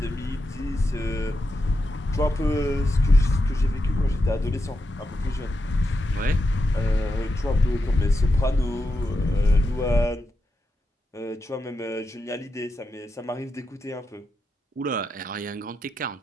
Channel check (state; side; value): normal; both; correlation 0.87